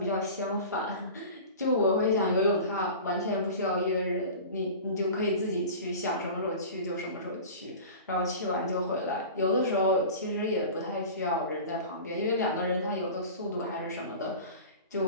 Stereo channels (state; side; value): inverted; both; correlation -0.36